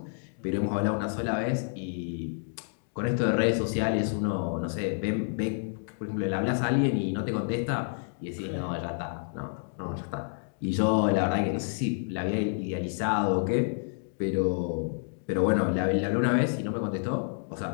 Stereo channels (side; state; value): right; silent; digital silence